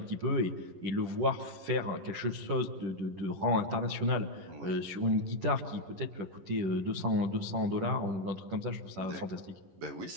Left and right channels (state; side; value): late; left; 10 ms